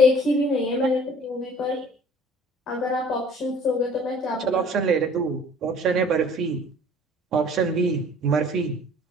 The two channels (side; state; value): both; normal; correlation 0.51